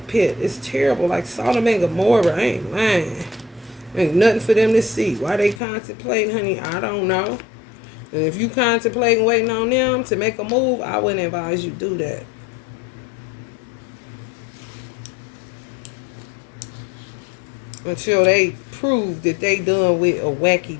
pit. It's terrible. Like Sodom and Gomorrah. I ain't lying. Ain't nothing for them to see. Why they contemplating, honey, I don't know. And if you contemplating waiting on them to make a move, I wouldn't advise you do that. Until they prove that they done with a wacky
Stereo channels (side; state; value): right; drops out; at 5.6 s